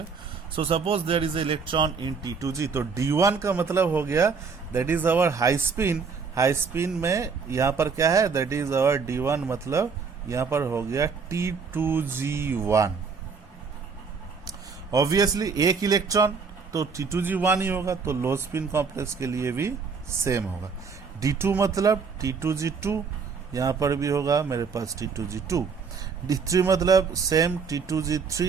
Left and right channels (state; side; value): quieter; left; 5.4 dB